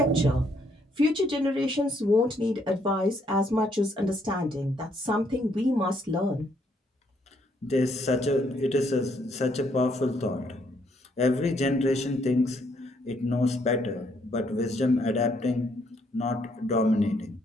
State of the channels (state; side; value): normal; both; correlation 0.71